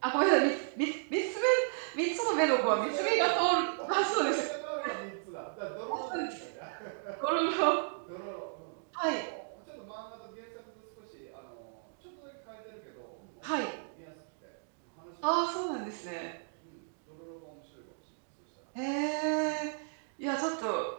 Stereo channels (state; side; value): silent; left; digital silence